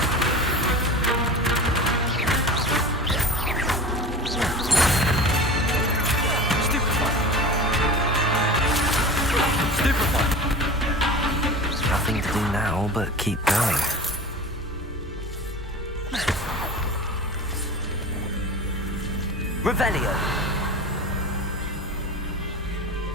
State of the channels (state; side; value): normal; both; correlation 0.35